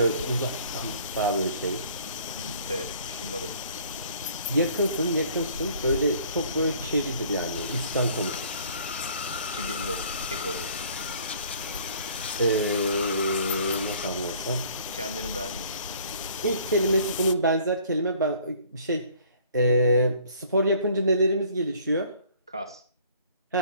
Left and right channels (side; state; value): both; inverted; correlation -0.55